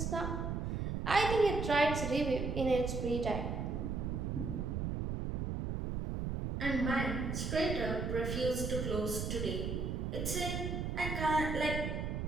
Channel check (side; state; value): right; noise; rumble, 2 dB below the sound